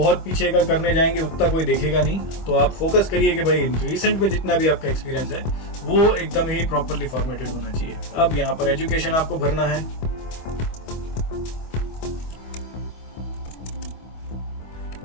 पीछे का करने जाएंगे उतना कोई देखेगा नहीं, तो आप फोकस करिए कि भाई रिसेंट में जितना भी आपका एक्सपीरियंस है वो एकदम ही प्रॉपरली फॉर्मेटेड होना चाहिए। अब यहाँ पर एजुकेशन आपको भरना है,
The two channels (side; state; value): right; late; 25 ms